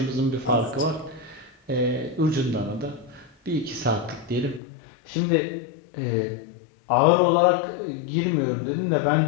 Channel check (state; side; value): drops out; right; at 4.6 s